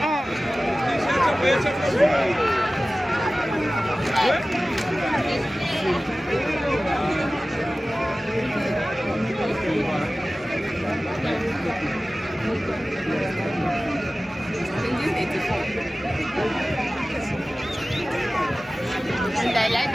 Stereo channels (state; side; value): normal; both; correlation 0.97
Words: And I like